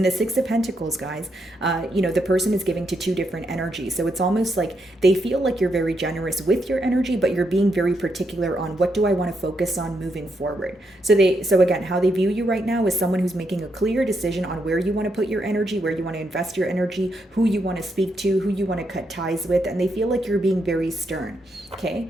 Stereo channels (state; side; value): normal; both; correlation 0.80